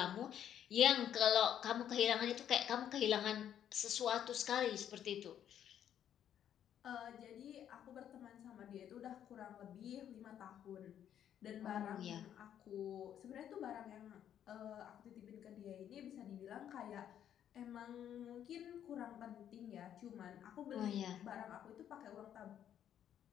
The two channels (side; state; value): right; quieter; 10.0 dB